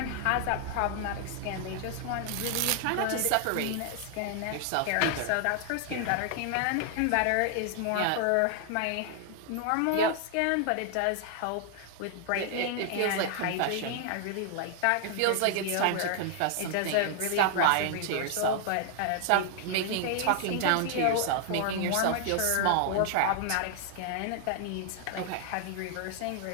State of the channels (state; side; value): different; both; correlation 0.00